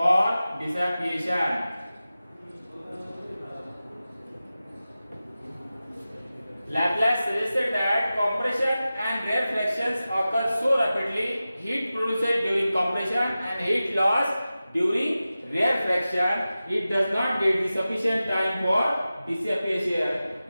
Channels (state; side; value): inverted; both; correlation -0.95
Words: dissipation. Laplace suggested that compression and rarefactions occur so rapidly, heat produced during compression and heat loss during rarefaction, it does not get the sufficient time for dissipation.